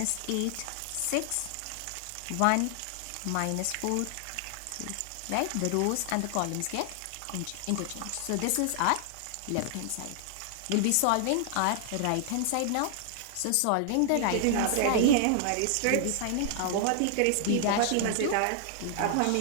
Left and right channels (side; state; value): both; different; correlation -0.01